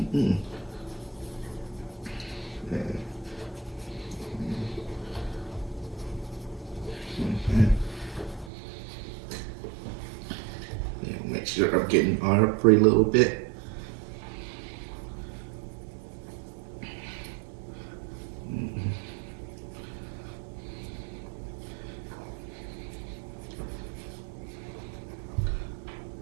Make sure I'm getting every little bit.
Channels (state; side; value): drops out; left; at 8.5 s